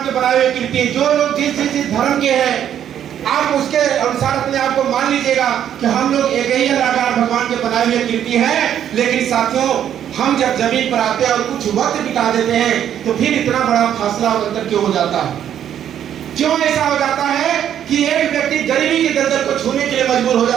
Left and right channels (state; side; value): quieter; left; 10.0 dB